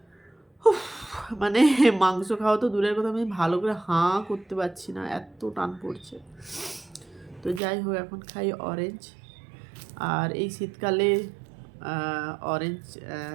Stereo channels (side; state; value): left; drops out; at 7.6 s